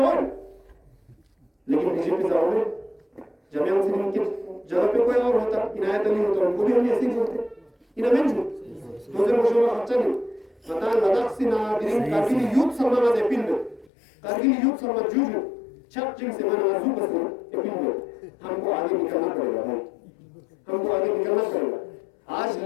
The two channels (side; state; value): right; drops out; at 13.9 s